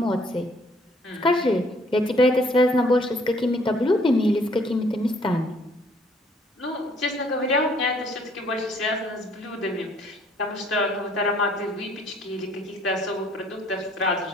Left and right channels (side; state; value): both; normal; correlation 0.62